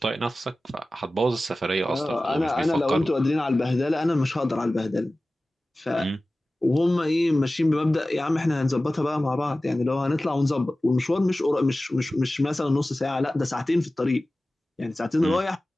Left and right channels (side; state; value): both; normal; correlation 0.97